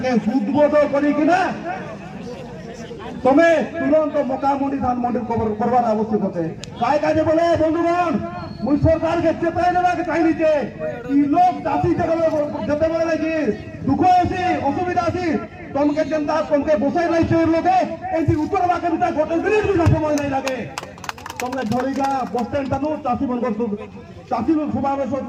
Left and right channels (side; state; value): both; identical; correlation 1.00